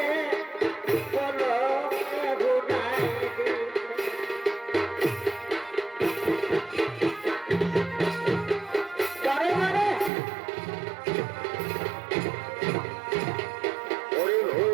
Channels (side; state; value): left; drops out; at 10.1 s